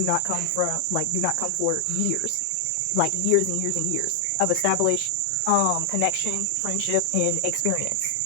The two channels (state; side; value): different; both; correlation 0.00